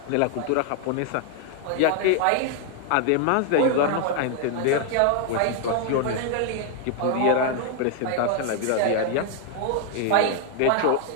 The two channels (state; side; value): different; both; correlation 0.00